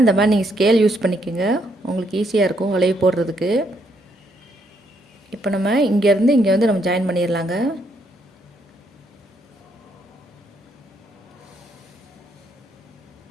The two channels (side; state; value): both; normal; correlation 0.74